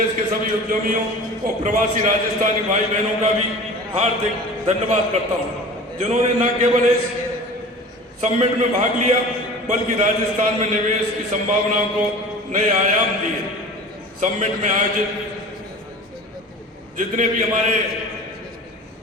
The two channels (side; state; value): both; normal; correlation 0.39